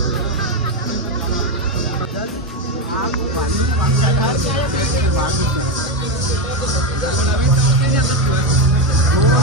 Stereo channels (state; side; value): normal; both; correlation 0.11